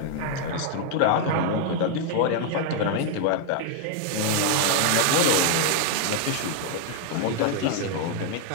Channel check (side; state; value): both; different; correlation 0.00